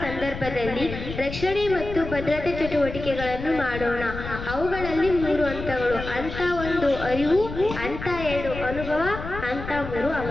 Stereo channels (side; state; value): left; noise; rumble, 9 dB below the sound